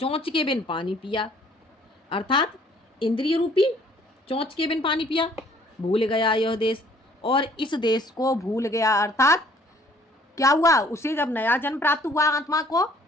के बिन पानी पिया, अर्थात इंद्रिय रूपी चोंच के बिन पानी पिया। भूल गया यह देश, और इस देश को भूल गया, अर्थात क्या हुआ? उसे जब नया जन्म प्राप्त हुआ आत्मा को,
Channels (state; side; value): normal; both; correlation 0.59